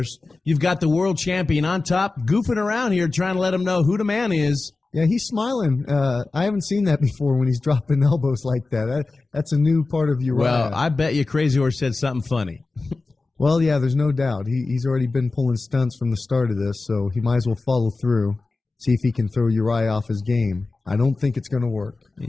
You've got the world champion on top, goofing around here, trying to let him know who the man is. Yeah, he's smiling. I haven't seen that before when he's dropping elbows like that. That's a new part of Urijah. Well, I bet you Crazy Horse said something funny. Well, yeah, there's no doubt. He's already been pulling stunts from the start of this, so he might as well follow through, see if he can throw Urijah off his game. I don't think it's going to work.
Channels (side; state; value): right; quieter; 3.6 dB